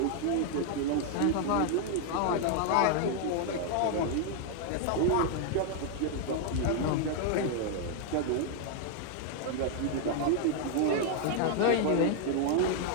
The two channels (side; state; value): both; different; correlation 0.00